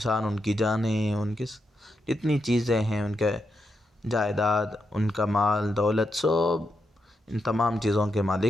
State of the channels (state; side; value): normal; both; correlation 0.84